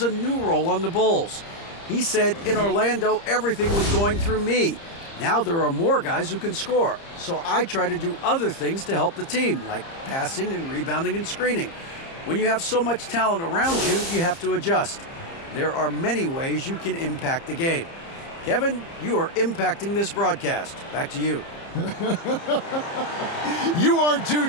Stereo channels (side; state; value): right; late; 30 ms